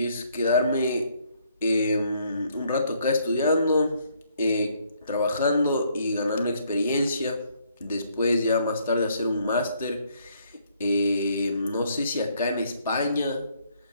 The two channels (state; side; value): inverted; both; correlation -0.68